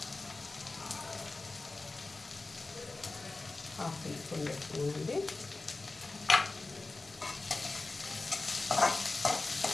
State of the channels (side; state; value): right; quieter; 3.4 dB